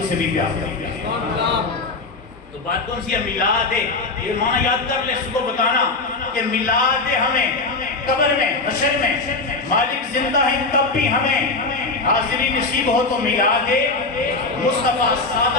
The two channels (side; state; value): right; quieter; 3.6 dB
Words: سے بھی پیار کرتے ہیں۔ تو بات کون سی ہے؟ میلاد ہے۔ یہ معنی یاد کر لے، اس کو بتانا کہ میلاد ہے، ہمیں قبر میں، حشر میں مالک زندہ ہیں تب بھی ہمیں حاضری نصیب ہو تو میلاد مصطفیٰ۔